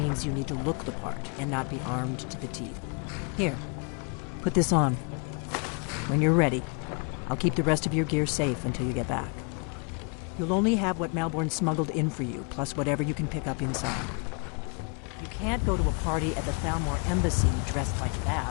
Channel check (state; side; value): quieter; right; 37.4 dB